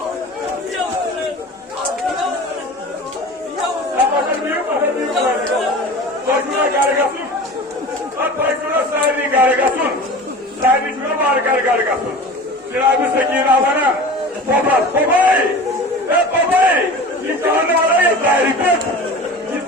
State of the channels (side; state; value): both; normal; correlation 0.36